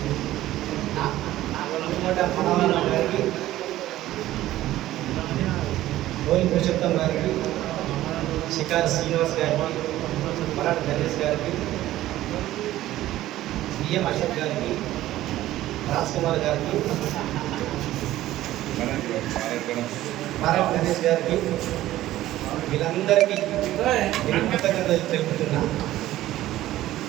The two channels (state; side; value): quieter; left; 14.8 dB